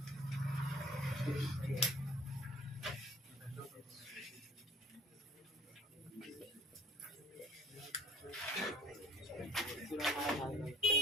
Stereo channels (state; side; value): normal; both; correlation 0.49